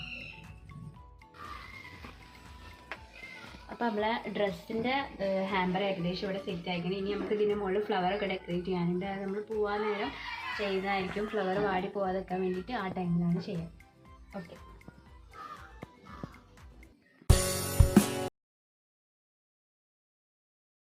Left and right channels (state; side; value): identical; both; correlation 1.00